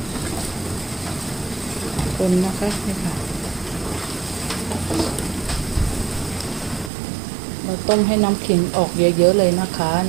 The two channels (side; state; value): left; drops out; at 6.9 s